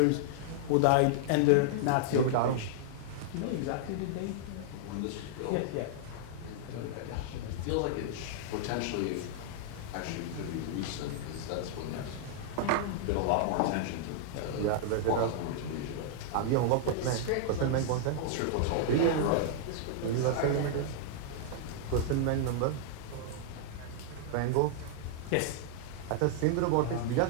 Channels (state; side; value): different; both; correlation -0.01